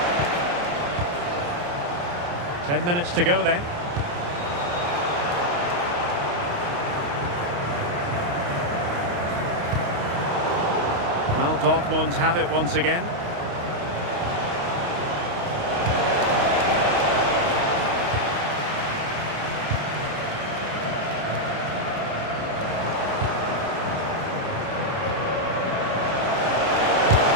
10 minutes to go then. Well, Dortmund have it once again.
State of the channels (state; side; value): late; left; 28 ms